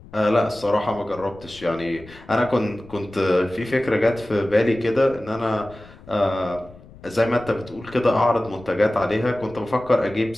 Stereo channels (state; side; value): noise; left; rumble, 21 dB below the sound